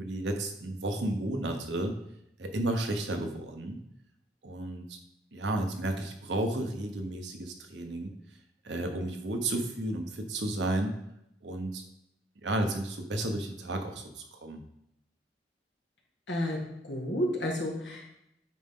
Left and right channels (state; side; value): normal; both; correlation 0.63